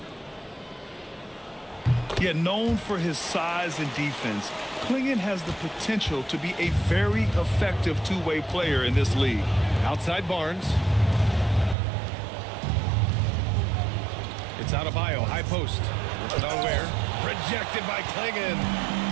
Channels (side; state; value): left; drops out; at 11.8 s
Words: Yet known for his size and defense, Klingon has the potential to be a very effective two-way player in this league. Outside Barnes. It's Adebayo, high post. Put on Ware. Rejected by Klingon.